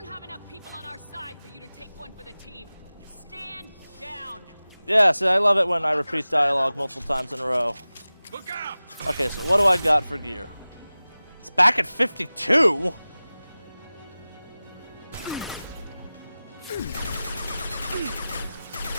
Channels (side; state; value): both; inverted; correlation -0.97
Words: have enough people on our side for you to take one for the team. Stand down. Yeah, see, I love it when I repeat dialogue multiple times in a row. Look out! Okay, so what do I got for gear? It's back at 52?